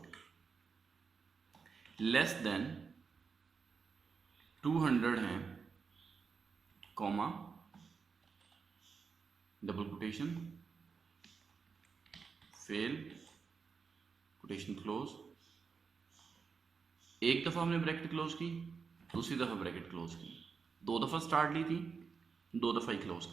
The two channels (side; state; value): left; quieter; 5.4 dB